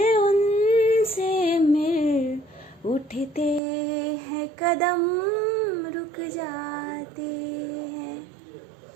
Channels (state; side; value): drops out; left; at 3.6 s